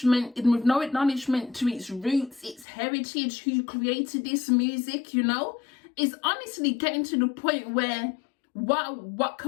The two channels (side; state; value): right; drops out; at 2.7 s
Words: to its roots, its heritage, who created this music, you know? It's honestly getting to the point where what